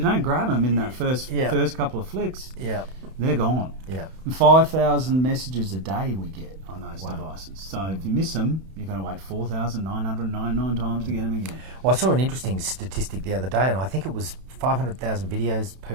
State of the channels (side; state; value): left; late; 31 ms